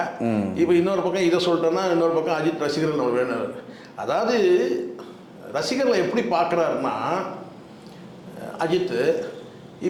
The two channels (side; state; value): both; identical; correlation 1.00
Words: இப்போ இன்னொரு பக்கம் இதை சொல்லிட்டோன்னா இன்னொரு பக்கம் அஜித் ரசிகர்கள் நம்ம வேணும். அதாவது ரசிகர்களை எப்படி பார்க்குறாருன்னா, அஜித்து